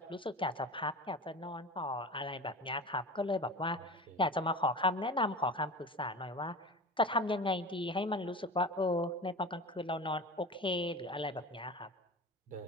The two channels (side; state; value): both; normal; correlation 0.33